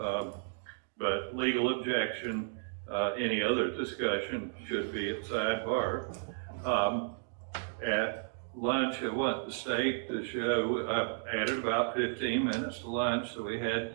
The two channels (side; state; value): left; silent; digital silence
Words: but legal objection, any other discussion should be at sidebar. At lunch, I want the state to show, I added about 15 minutes to lunch, so we had